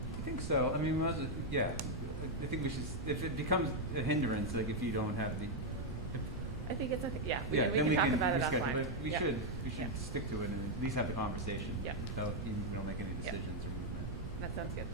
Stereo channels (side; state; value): right; noise; rumble, 8 dB below the sound